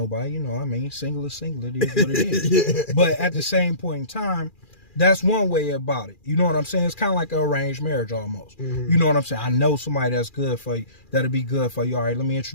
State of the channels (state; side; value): late; right; 2.4 ms